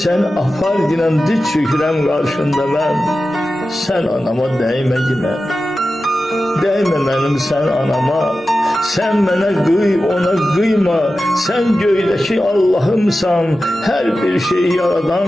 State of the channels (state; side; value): normal; both; correlation 0.93